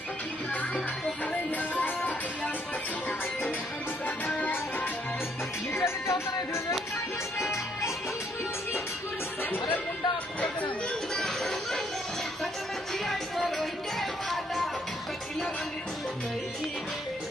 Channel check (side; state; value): both; normal; correlation 0.69